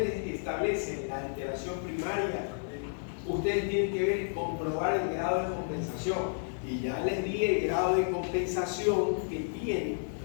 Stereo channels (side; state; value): right; silent; digital silence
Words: establecen la alteración primaria, ustedes tienen que comprobar el grado de compensación. Y ya les di el grado de compensación que tiene.